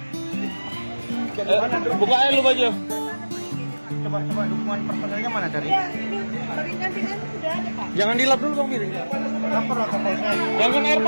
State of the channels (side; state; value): both; inverted; correlation -1.00